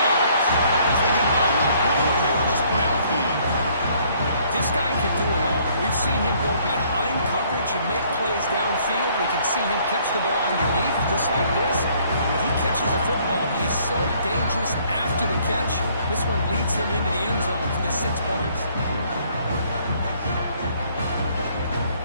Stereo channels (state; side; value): inverted; both; correlation -0.63